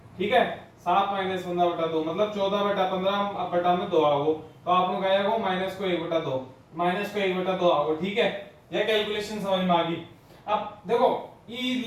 ठीक है। 7 माइनस 15/2 मतलब 14/15 में 2 आओ तो आप लोग आएगा वो माइनस को 1/2 माइनस को 1/2 आओ, ठीक है। यह कैलकुलेशन समझ में आ गई। अब देखो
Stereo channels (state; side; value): identical; both; correlation 1.00